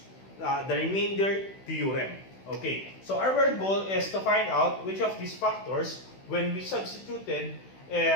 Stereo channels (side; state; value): right; late; 16 ms